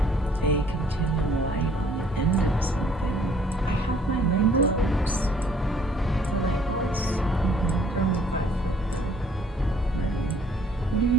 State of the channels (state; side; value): normal; both; correlation 0.60